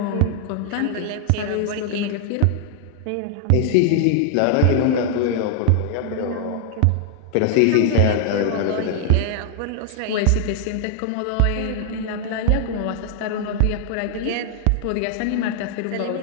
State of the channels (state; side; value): different; both; correlation 0.00